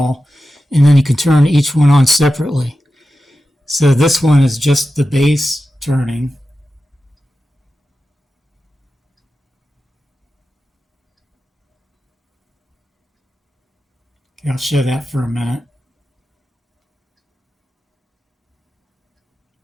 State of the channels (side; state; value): both; normal; correlation 0.92